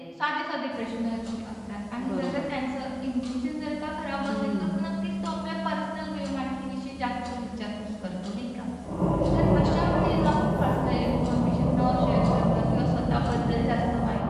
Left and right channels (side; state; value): both; identical; correlation 1.00